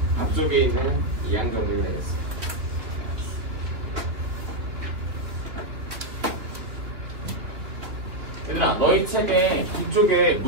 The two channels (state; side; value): late; left; 3.1 ms